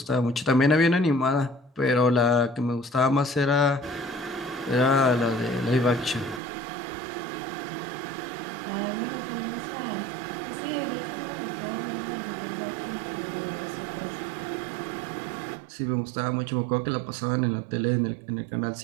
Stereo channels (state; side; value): drops out; left; at 6.4 s